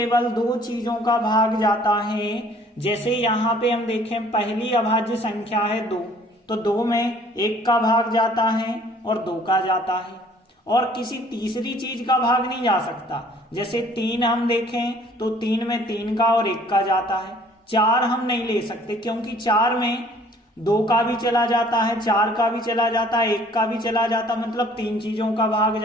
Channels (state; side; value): normal; both; correlation 0.56